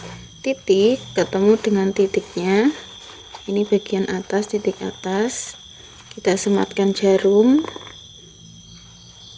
titik ketemu dengan titiknya, ini bagian atas, titik atas, kita sematkan jarum.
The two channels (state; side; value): identical; both; correlation 1.00